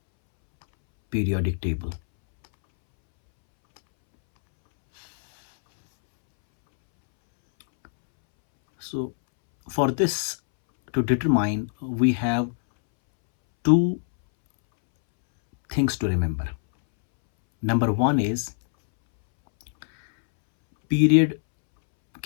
periodic table. So for this to determine, we have two things to remember. Number one is period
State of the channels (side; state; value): right; silent; 63 dB below the other